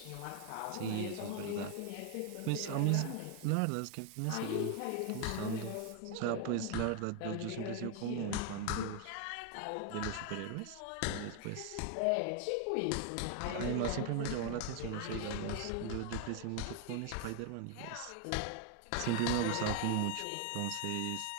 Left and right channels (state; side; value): different; both; correlation 0.01